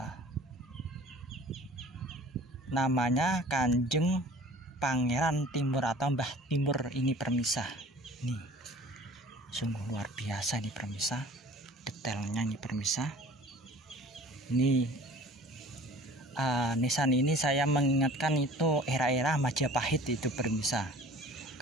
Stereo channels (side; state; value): both; normal; correlation 0.47